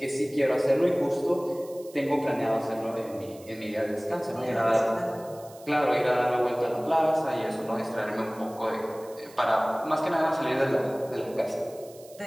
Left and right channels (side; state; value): right; noise; hiss, 23 dB below the sound